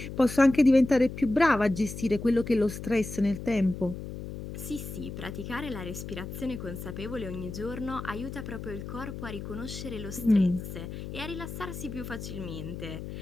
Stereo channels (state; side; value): noise; left; hum, 9 dB below the sound